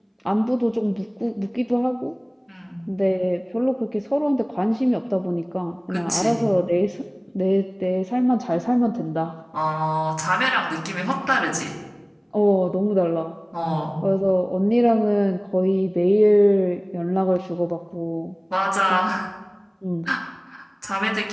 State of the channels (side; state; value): both; identical; correlation 1.00